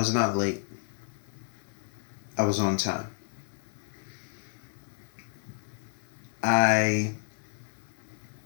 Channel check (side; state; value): right; silent; 57 dB below the other